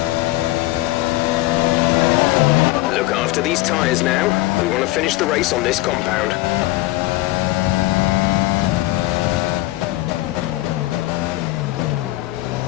Look after these tyres now. We want to finish the race on this compound.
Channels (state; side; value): quieter; right; 18.4 dB